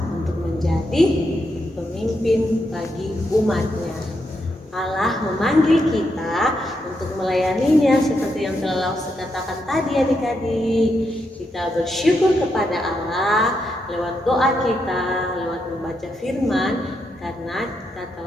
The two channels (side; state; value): both; normal; correlation 0.82